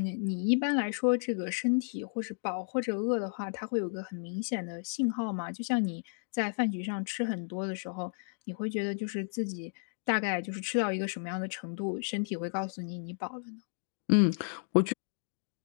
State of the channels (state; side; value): silent; right; digital silence